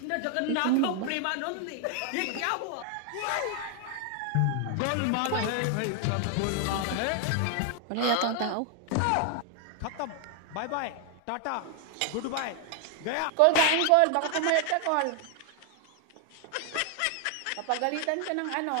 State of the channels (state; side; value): different; both; correlation 0.00